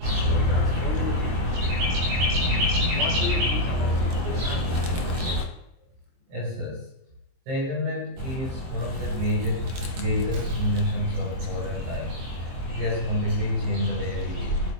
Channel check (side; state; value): left; late; 23 ms